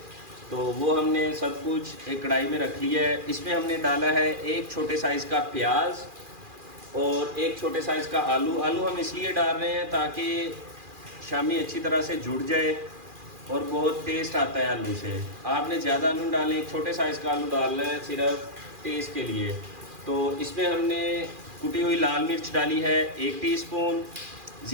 तो वो हमने सब कुछ एक कढ़ाई में रख लिया है। इसमें हमने डाला है एक छोटे साइज़ का प्याज और एक छोटे साइज़ का आलू। आलू हम इसलिए डाल रहे हैं ताकि शामी अच्छी तरह से जुड़ जाए और बहुत टेस्ट आता है आलू से। आपने ज़्यादा आलू डालें, एक छोटे साइज़ का आलू डालना है सिर्फ टेस्ट के लिए। तो इसमें हमने कुटी हुई लाल मिर्च डाली है 1 टीस्पून,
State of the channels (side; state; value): left; late; 2.4 ms